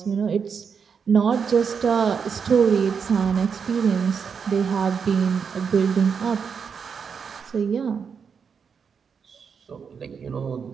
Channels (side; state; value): left; quieter; 6.3 dB